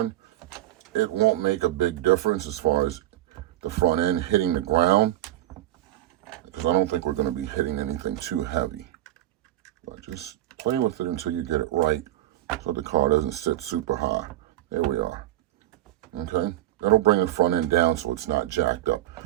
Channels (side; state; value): left; quieter; 14.4 dB